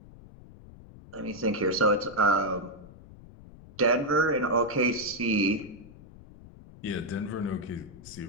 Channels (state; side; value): noise; left; rumble, 19 dB below the sound